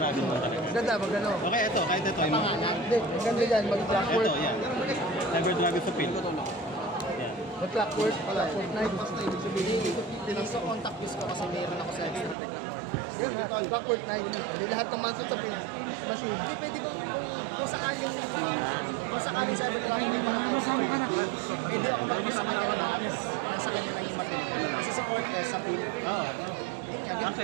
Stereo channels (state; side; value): drops out; left; at 12.4 s